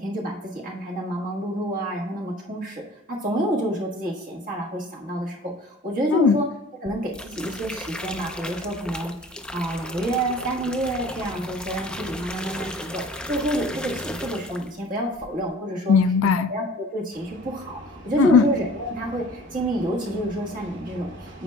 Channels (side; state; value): both; normal; correlation 0.47